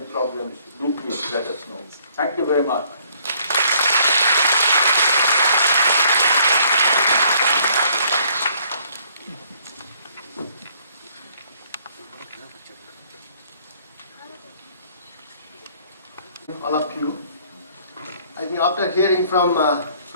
do please let us know. Thank you very much. All of you. I think after hearing from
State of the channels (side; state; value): both; inverted; correlation -0.62